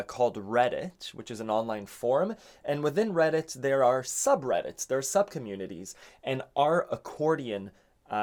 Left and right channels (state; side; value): identical; both; correlation 1.00